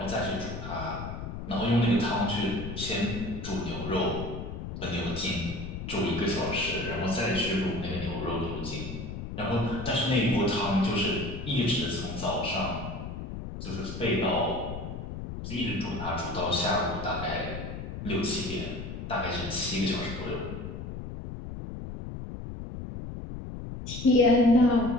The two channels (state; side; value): noise; left; rumble, 8 dB below the sound